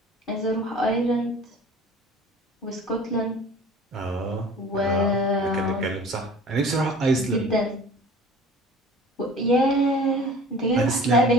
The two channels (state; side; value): normal; both; correlation 0.44